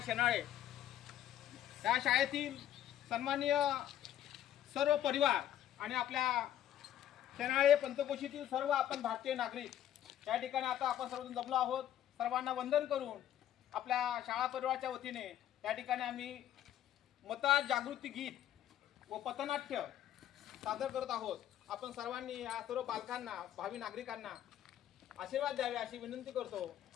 शेनाळे या शाळेतील सन्माननीय सर्व परिवार आणि आपल्या शेनाळे पंचकोशीतील सर्व आपण भारतीय नागरिक या ठिकाणी आता आपण सर्वजण जमलो आहोत. सर्वांना वंदन करून आपल्या शाळा परिवाराच्या वतीने या ठिकाणी आम्ही मतदार जागृती गीत व पथनाट्य सादर करत आहोत. आपण सर्वांनी या सर्व बालकांना भावी नागरिकांना आशीर्वाद द्यावे अशी विनंती करतो.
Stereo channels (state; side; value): quieter; right; 11.5 dB